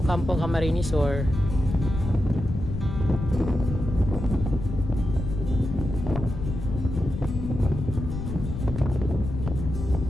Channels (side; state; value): left; noise; rumble, 5 dB below the sound